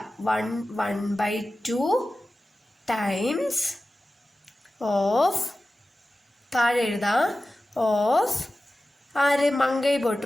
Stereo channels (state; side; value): normal; both; correlation 0.95